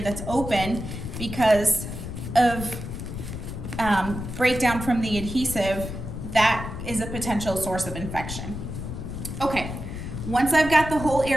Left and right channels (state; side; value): noise; left; rumble, 7 dB below the sound